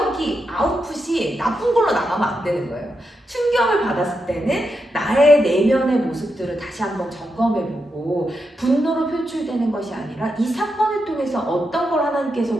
아웃풋이 나쁜 걸로 나가면 안 되는 거예요. 충격을 받았을 때는 나의 내면의 모습들을 다시 한번 점검해보고 분노로 표출되는 것이 아니라 이 사건을 통해서 어떤 걸 하나님께서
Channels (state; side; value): normal; both; correlation 0.85